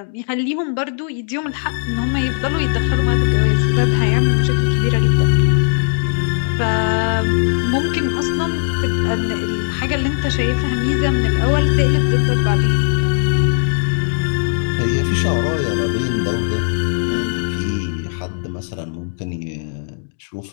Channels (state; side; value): silent; right; digital silence